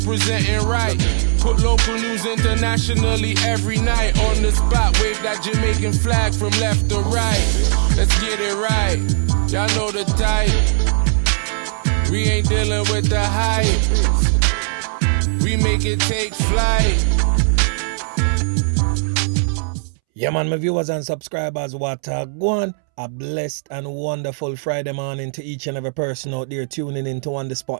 right. Put local news internationally every night. On the spot, wave that Jamaican flag from left to right. Let's get it right, y'all know the type. We ain't dealing with the hype. We make it take flight. Yeah man, my viewers and subscribers, what go on? A blessed and wonderful Friday morning to each and every person out there tuning into On The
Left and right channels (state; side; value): silent; left; 67 dB below the other